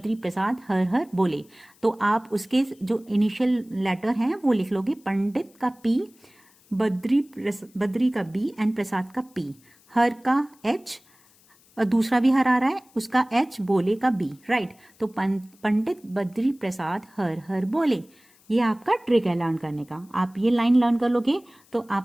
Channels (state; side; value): noise; left; hiss, 30 dB below the sound